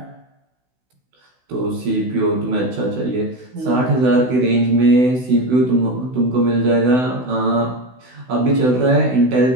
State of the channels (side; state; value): left; late; 16 ms